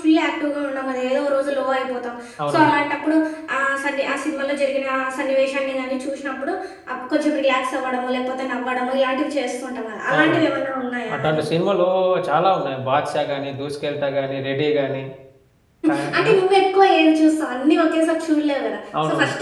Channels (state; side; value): identical; both; correlation 1.00